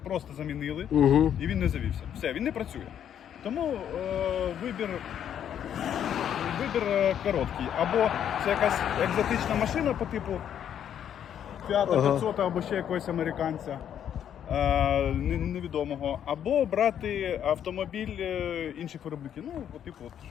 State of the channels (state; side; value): quieter; right; 9.5 dB